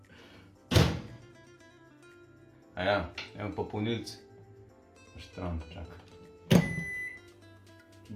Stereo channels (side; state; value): both; identical; correlation 1.00